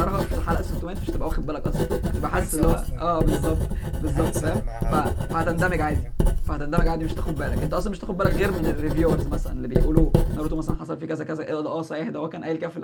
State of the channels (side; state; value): both; identical; correlation 1.00